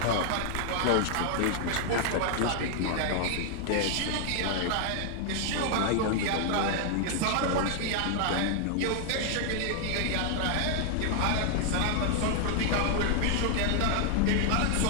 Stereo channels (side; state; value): both; different; correlation 0.00